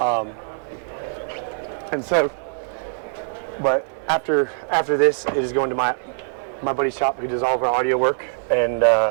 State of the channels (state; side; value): silent; left; digital silence